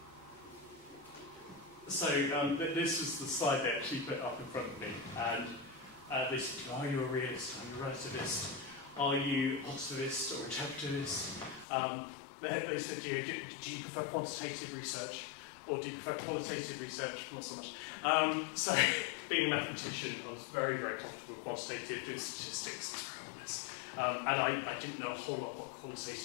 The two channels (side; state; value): right; drops out; at 11.7 s